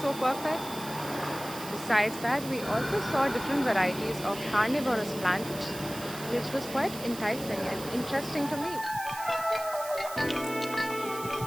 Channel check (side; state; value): right; noise; hiss, 12 dB below the sound